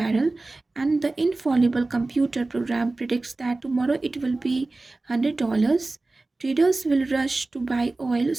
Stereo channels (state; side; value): quieter; left; 3.2 dB